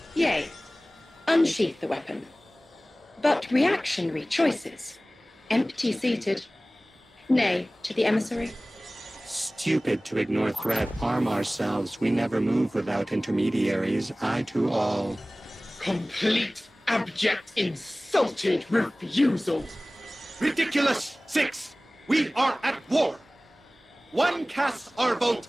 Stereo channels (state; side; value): normal; both; correlation 0.98